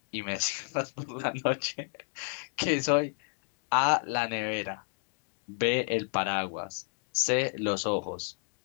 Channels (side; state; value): right; silent; 57 dB below the other